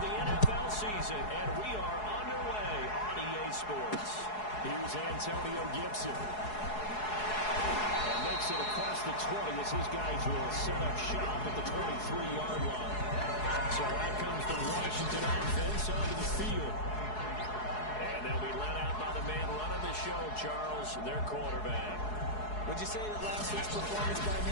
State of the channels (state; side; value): late; right; 4.7 ms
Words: the NFL season, and we are underway on EA Sports. Here's Antonio Gibson. And makes it across the 20 as his guys will set up shop at the 23-yard line. So out comes the Washington offense onto the field. And they'll be let out by the man running the show, Charles, their quarterback. Would you say that last week's performance by